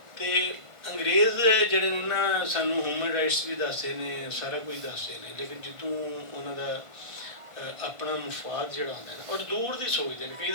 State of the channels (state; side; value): late; left; 1.5 ms